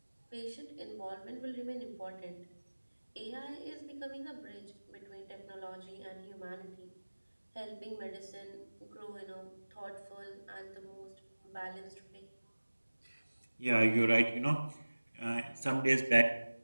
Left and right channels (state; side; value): inverted; both; correlation -1.00